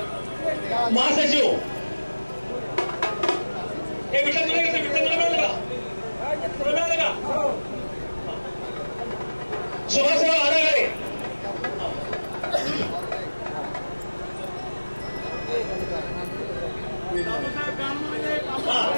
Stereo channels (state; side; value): inverted; both; correlation -1.00